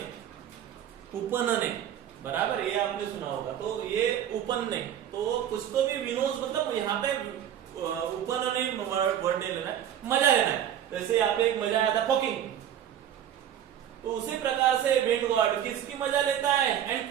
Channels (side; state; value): left; quieter; 10.2 dB